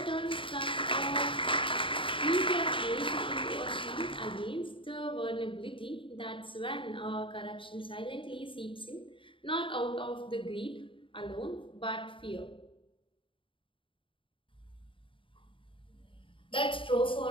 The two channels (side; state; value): right; late; 0.25 ms